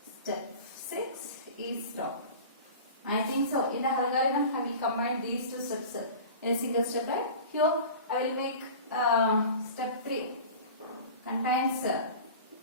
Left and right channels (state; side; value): inverted; both; correlation -0.37